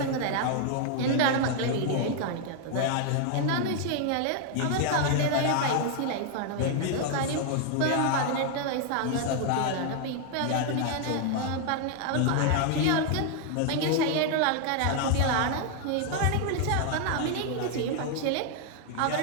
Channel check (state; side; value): different; both; correlation 0.00